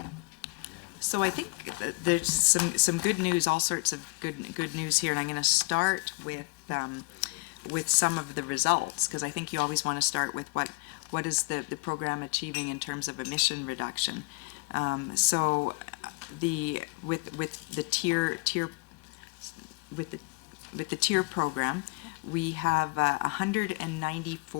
So I think that there's some good news, all sorts of good news here, and I'm going to start with some of the results, because I think you always want to start with what is the program achieving in terms of emission reduction. So with the TIER program, we have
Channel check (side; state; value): right; quieter; 27.4 dB